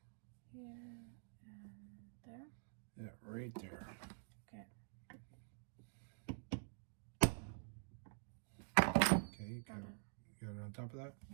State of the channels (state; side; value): silent; left; digital silence